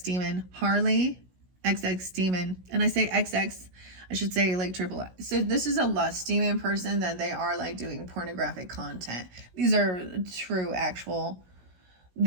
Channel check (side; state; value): left; late; 16 ms